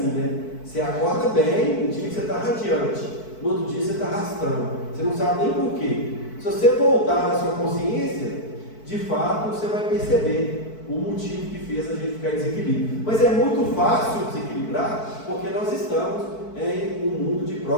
né? Você acorda bem, um dia que você está radiante, no outro dia você está arrastando, você não sabe nem por quê. Se você voltar na sua consciência, de fato você vai perceber o motivo que fez a gente ficar em desequilíbrio. Mas é muito fácil desequilibrar, porque nós estamos em um mundo de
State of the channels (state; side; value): late; right; 4.6 ms